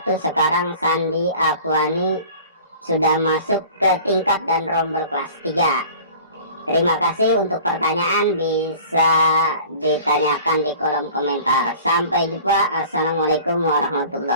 1. Sekarang Sandi Afwani sudah masuk ke tingkat dan rombel kelas 3. Terima kasih. Untuk pertanyaan bisa ditanyakan di kolom komentar. Sampai jumpa. Assalamualaikum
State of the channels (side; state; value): both; inverted; correlation -0.45